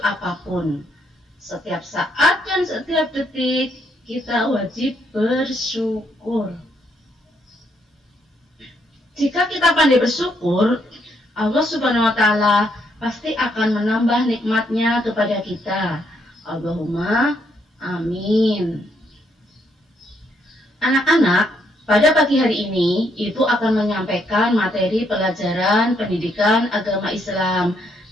apapun. Setiap saat dan setiap detik kita wajib bersyukur. Jika kita pandai bersyukur, Allah Subhanahu wa Ta'ala pasti akan menambah nikmatnya kepada kita. Allahumma amin. Anak-anak, pada pagi hari ini Ibu akan menyampaikan materi pelajaran pendidikan agama Islam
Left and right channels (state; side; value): normal; both; correlation 0.73